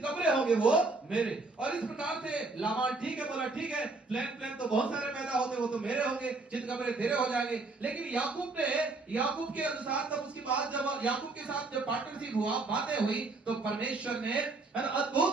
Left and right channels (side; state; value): left; quieter; 3.5 dB